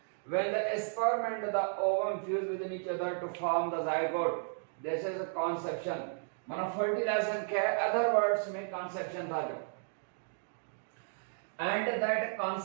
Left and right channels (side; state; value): left; silent; digital silence